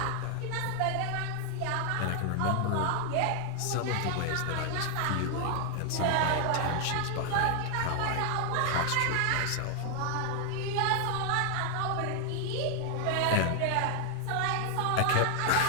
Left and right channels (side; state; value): both; different; correlation 0.00